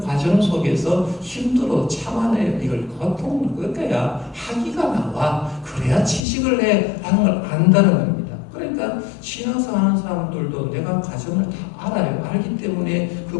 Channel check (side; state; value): right; drops out; at 6.2 s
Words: 속에서 힘들어 참아내요. 이걸 고통을 겪어야 학위가 나와. 그래야 취직을 해 라는 걸 안다는 겁니다. 그러니까 신앙생활 하는 사람들도 내가 과정을 다 알아요. 알기 때문에